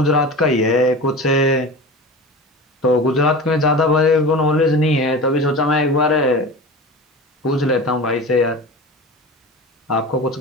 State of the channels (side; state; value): both; normal; correlation 0.32